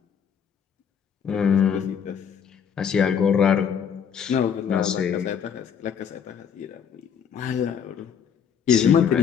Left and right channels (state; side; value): quieter; right; 7.6 dB